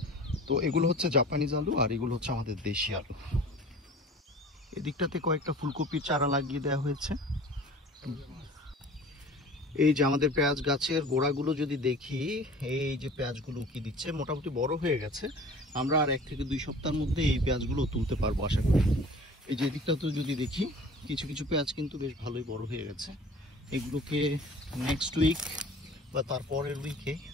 তো এগুলো হচ্ছে জাপানিজ আলু আর এগুলো হচ্ছে আমাদের দেশি আলু। এদিকটাতে কয়েকটা ফুলকপির চারা লাগিয়ে দেওয়া হয়েছে। এই যে আমাদের পেঁয়াজ গাছের গোড়াগুলো যদি দেখি, এই যে পেঁয়াজগুলো উকি দিচ্ছে, মোটামুটি বড় হয়ে গেছে। আমরা আর 1 থেকে 2 সপ্তাহের মধ্যে এই পেঁয়াজগুলো তুলতে পারবো আশা করি। এই যে এদিকটাতেও যদি দেখি, কিছু কিছু পেঁয়াজ কিন্তু বেশ ভালোই বড় হয়ে গেছে। এগুলোকে নেক্সট উইক বা তারপরের উইকে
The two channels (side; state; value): both; normal; correlation 0.44